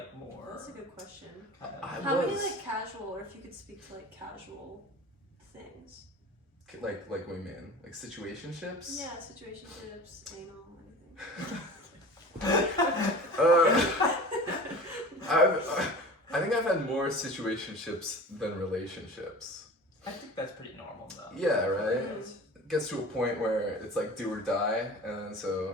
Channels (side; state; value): both; normal; correlation 0.38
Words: more? That's a good question. I Many was like casual, or if you could speak to like casual things? like what do you mean? Like situationships? Yeah, situationships, anal, anything. I think I've had more situationships than relationships. I think that's pretty normal though. Yeah, right? It gets to a point where it's like do or die, and